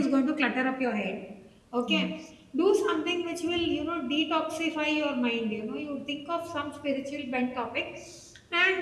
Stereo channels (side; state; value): both; identical; correlation 1.00